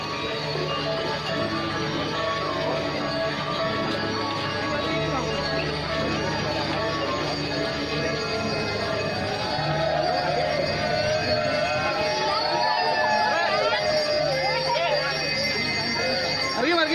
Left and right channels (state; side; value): identical; both; correlation 1.00